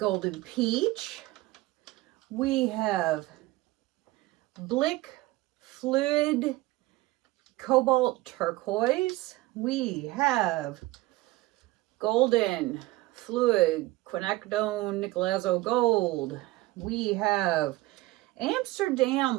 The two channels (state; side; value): quieter; left; 18.9 dB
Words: Peach. We have Blick Fluid Cobalt Turquoise. We have Golden Fluid Quinacridone Nicolazo Gold. We have